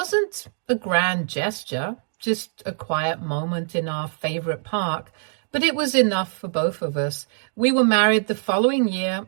a grand gesture, just a quiet moment in our favorite park, but it was enough for both of us. We were married the following year,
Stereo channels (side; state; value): left; silent; 63 dB below the other